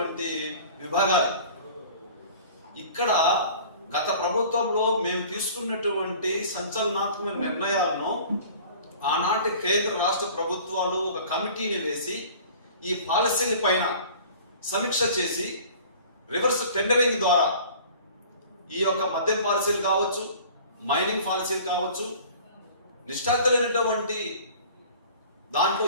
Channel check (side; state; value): both; inverted; correlation -0.46